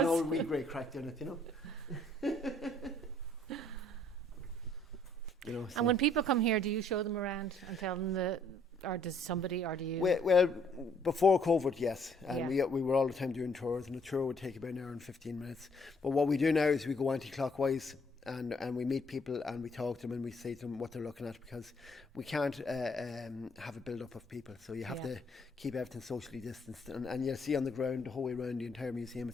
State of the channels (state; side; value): normal; both; correlation 0.65